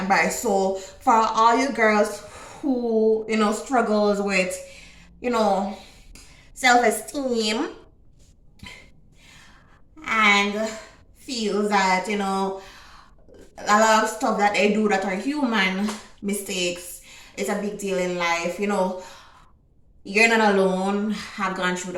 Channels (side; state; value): both; identical; correlation 1.00